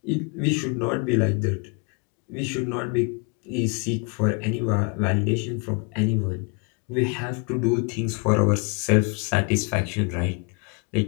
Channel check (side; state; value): right; quieter; 34.8 dB